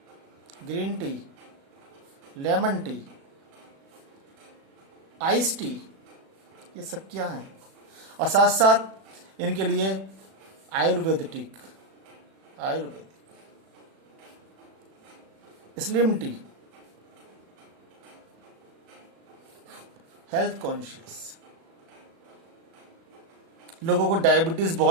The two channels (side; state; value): left; late; 36 ms